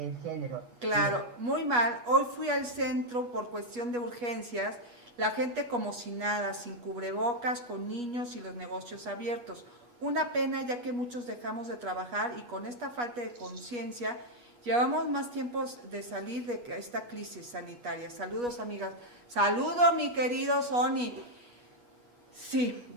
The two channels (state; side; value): late; left; 8.3 ms